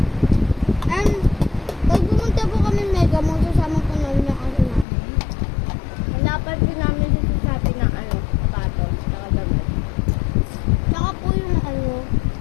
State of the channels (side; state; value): right; drops out; at 4.9 s